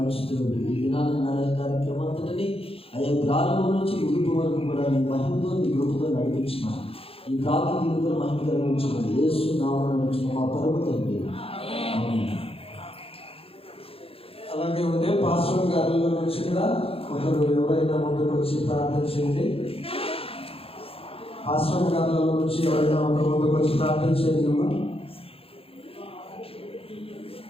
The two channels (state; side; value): late; right; 0.27 ms